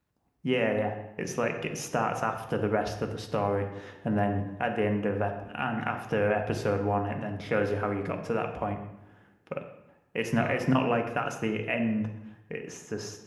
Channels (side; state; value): both; identical; correlation 1.00